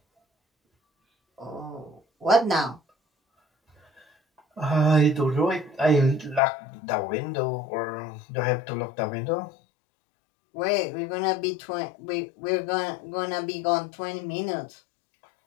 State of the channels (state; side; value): drops out; right; at 6.4 s